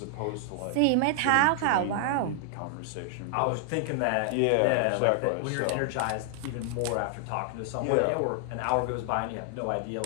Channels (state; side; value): different; both; correlation 0.00